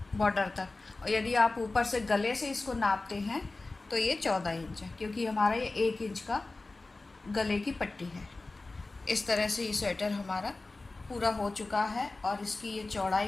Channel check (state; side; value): quieter; right; 3.3 dB